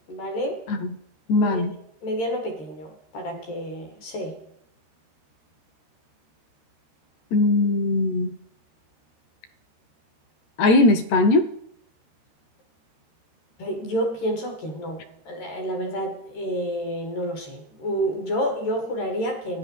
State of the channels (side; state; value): right; late; 13 ms